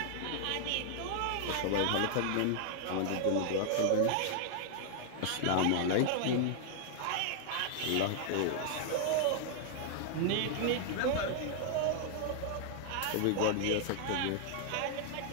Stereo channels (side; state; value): both; different; correlation 0.00